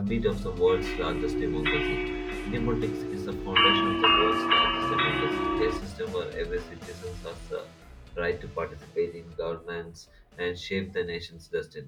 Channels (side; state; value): both; identical; correlation 1.00